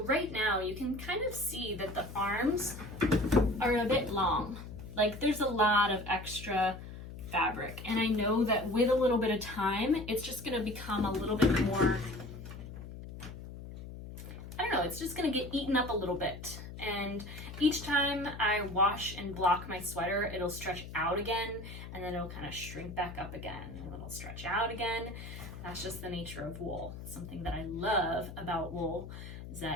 right now you can kind of see that the arms are a bit long. Like there's a lot of extra fabric, and I know that with a little bit of time it's just going to become a little bit more, I don't know, it's just going to get eaten up a little bit. And each time I wash and block my sweater, it'll stretch out again, and then it'll kind of shrink back up again, and it'll stretch out again. That's just the nature of wool. Something that I love about wool is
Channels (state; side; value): noise; left; hum, 11 dB below the sound